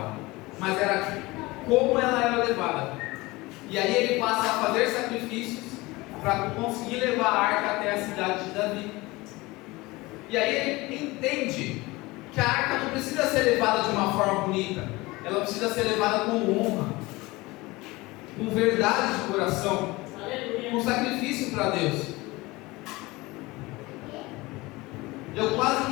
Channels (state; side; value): quieter; right; 21.7 dB